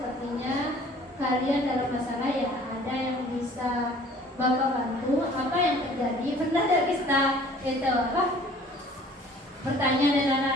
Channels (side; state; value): both; normal; correlation 0.52